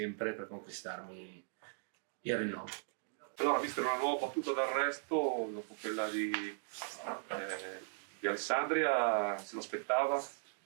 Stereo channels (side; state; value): left; silent; digital silence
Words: per conquistarmi il rinnovo. Allora, vista una nuova battuta d'arresto dopo quella di Alessandria, se lo aspettava?